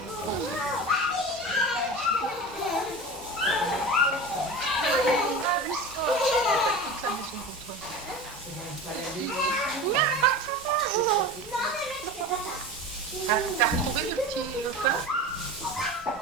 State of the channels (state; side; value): normal; both; correlation 0.31